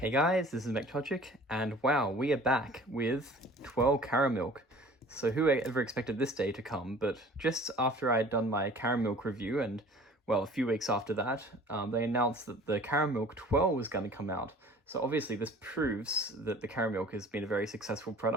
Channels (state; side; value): normal; both; correlation 0.47